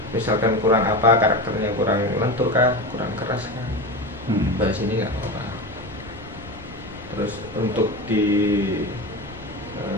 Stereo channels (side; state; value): left; noise; rumble, 20 dB below the sound